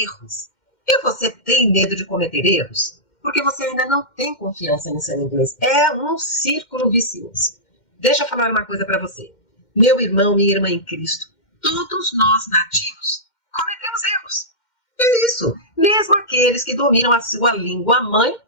E você tem medo de cometer erros? Porque você ainda não tem confiança no seu inglês. É um círculo vicioso. Deixa eu falar uma coisa para você. Meu irmão, minha irmã em Cristo, todos nós nativos cometemos erros. É isso. Mesmo aqueles que dominam a sua língua mãe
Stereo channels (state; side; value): late; right; 2.1 ms